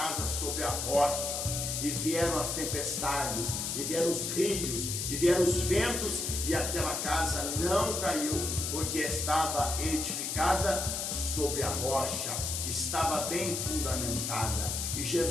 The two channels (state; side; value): noise; left; hiss, 2 dB below the sound